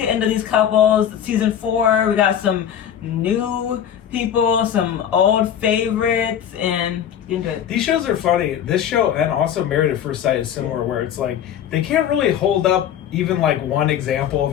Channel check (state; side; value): quieter; right; 9.5 dB